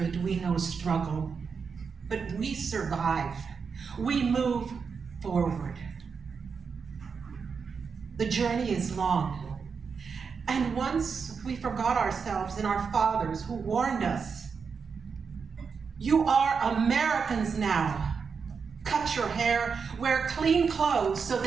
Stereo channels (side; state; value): left; quieter; 5.7 dB